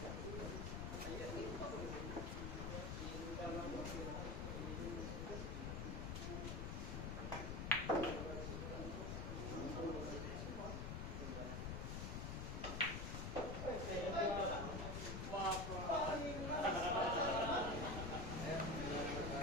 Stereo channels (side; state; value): left; noise; rumble, 3 dB below the sound